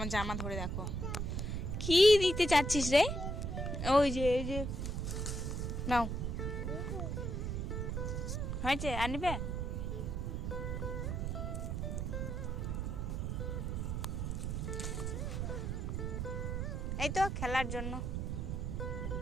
জামা ধরে। দেখো কি দিতে চাচ্ছিস রে? ওই যে এই যে নাও, হয়েছে আনবে? এই তো খেলার জন্য।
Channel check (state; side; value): noise; right; rumble, 1 dB below the sound